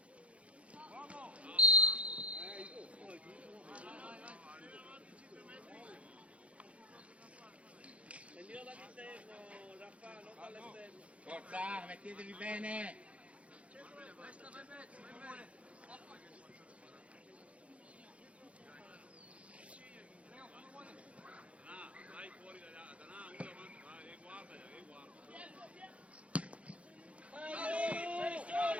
Prendilo dall'interno, Raffa, non dall'esterno. Forza, mettetevi bene.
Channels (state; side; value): late; left; 0.063 ms